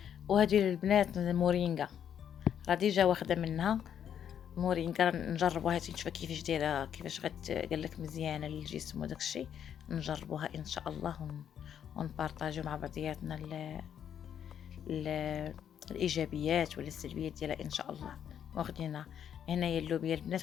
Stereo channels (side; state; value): right; quieter; 9.0 dB